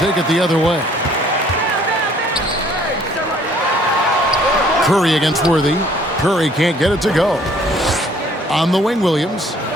it the other way. Curry against Worthy. Curry can't get it to go. On the wing, Williams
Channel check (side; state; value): both; normal; correlation 0.59